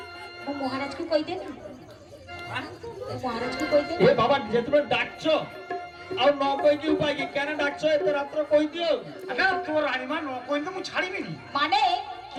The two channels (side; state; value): both; identical; correlation 1.00